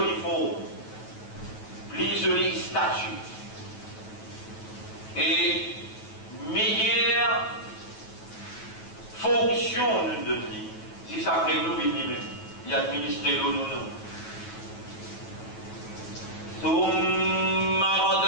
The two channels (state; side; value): late; right; 9.2 ms